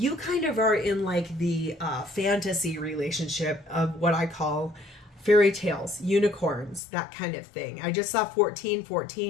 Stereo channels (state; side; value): drops out; right; at 6.8 s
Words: kind of are in like the fantasy relationship of what I call fairy tales, unicorns, that kind of thing. I just saw